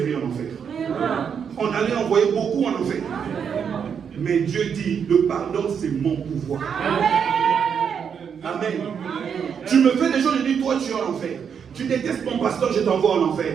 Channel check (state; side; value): quieter; left; 7.2 dB